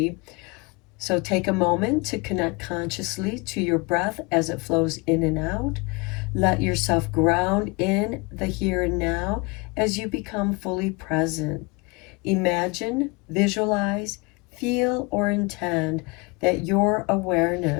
So take a moment to connect consciously to your breath as it flows in and out. Let yourself ground in the here and now as you become fully present. Imagine, visualize, feel, or intend that your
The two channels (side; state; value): right; quieter; 27.6 dB